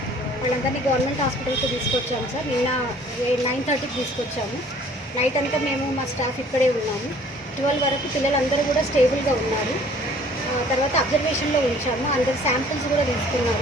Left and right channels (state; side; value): normal; both; correlation 0.54